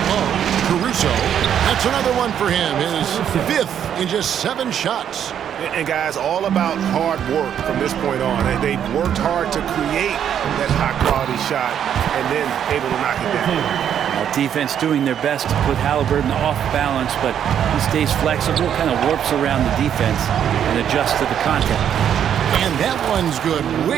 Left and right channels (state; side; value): quieter; left; 9.2 dB